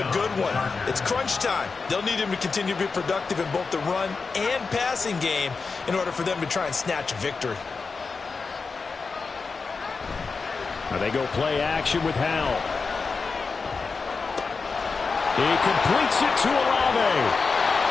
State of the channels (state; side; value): quieter; right; 4.6 dB